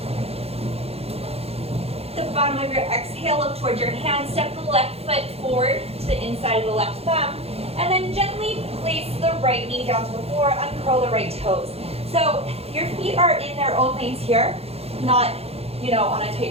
The bottom of your exhale, look towards your hand. Step the left foot forward to the inside of the left thumb. And then gently place the right knee down to the floor. Uncurl the right toes. So your feet are in their own lanes here, not, on a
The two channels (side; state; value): left; late; 0.29 ms